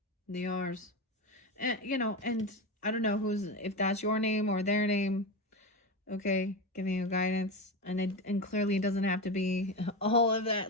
The R's. And, you know, and I don't know if that's your name or their name. Okay, giving you guidance. And clearly it doesn't have to be all of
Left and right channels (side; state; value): both; normal; correlation 0.18